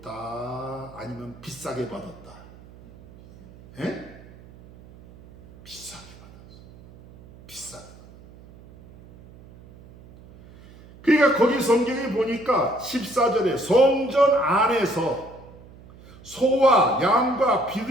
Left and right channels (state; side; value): noise; right; hum, 22 dB below the sound